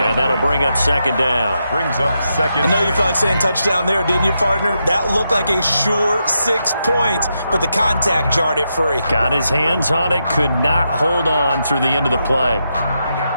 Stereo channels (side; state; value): both; inverted; correlation -0.84